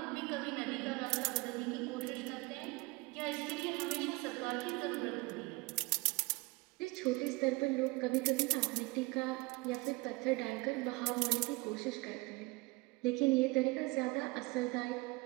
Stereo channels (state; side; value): quieter; left; 25.1 dB